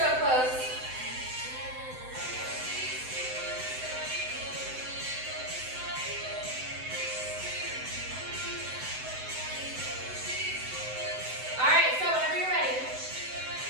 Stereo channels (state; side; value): late; left; 7.8 ms